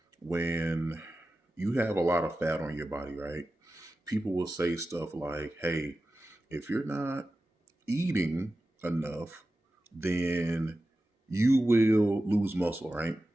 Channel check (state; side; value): normal; both; correlation 0.94